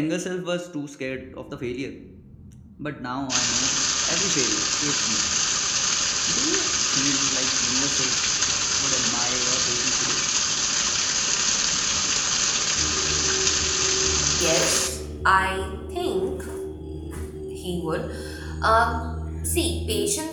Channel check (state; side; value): identical; both; correlation 1.00